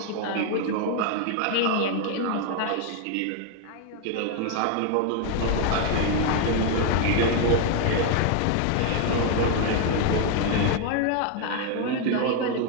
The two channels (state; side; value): different; both; correlation 0.01